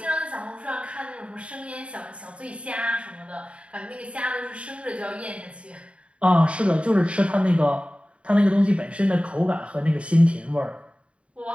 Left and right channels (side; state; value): left; late; 0.060 ms